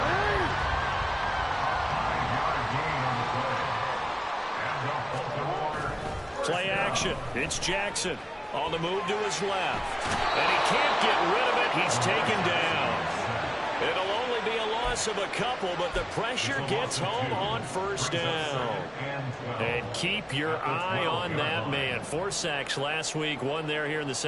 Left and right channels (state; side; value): identical; both; correlation 1.00